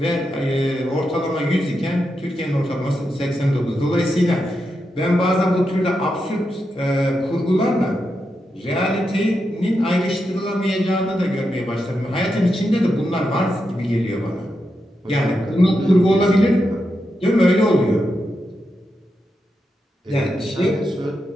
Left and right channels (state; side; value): normal; both; correlation 0.86